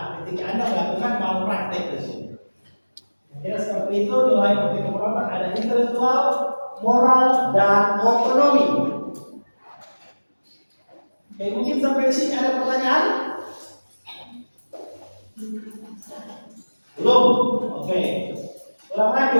Ketika Anda melakukan malpraktek tersebut. Kira seperti itu nilai etika perawatan ada intelektual, moral, dan otonomi. Oke, mungkin sampai di sini ada pertanyaan? Belum? Oke. Ulang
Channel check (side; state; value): both; inverted; correlation -1.00